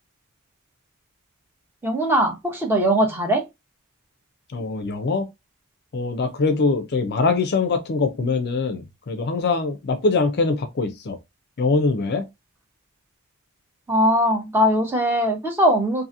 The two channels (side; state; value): both; normal; correlation 0.21